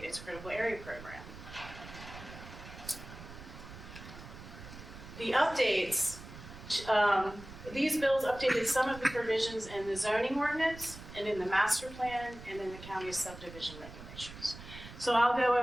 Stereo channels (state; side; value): noise; right; rumble, 14 dB below the sound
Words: its critical area program. The updates, these bills updated some of the provisions in the zoning ordinance and in the master plan and in the county's subdivision regulations. So I'll go